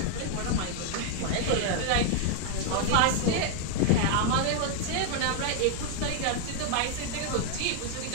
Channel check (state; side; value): different; both; correlation 0.00